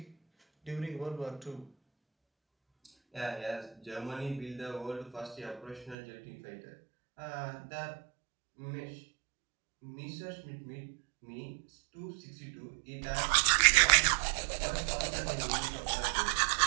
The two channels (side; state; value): left; drops out; at 6.0 s